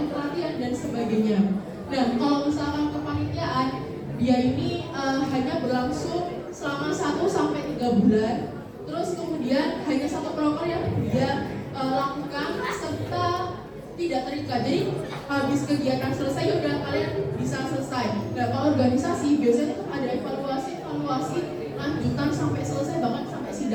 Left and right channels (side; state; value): both; identical; correlation 1.00